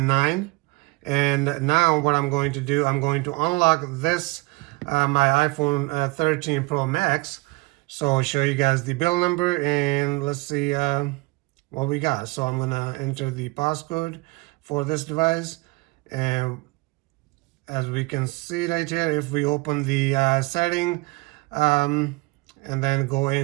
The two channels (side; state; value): left; quieter; 24.1 dB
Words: And now what I'm going to do, I'm going to unlock this my iPhone 13 Pro Max. So I'll show you guys the build number, and let's see what we got. So I'm gonna enter the passcode for this device, and as we can see right here, if we open the setting and then go